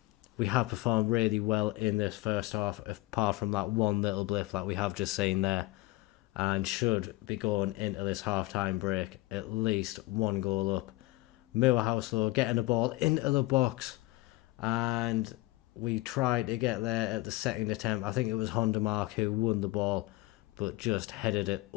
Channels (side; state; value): right; quieter; 19.3 dB